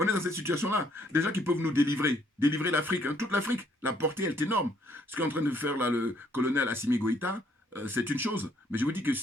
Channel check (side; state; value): both; normal; correlation 0.66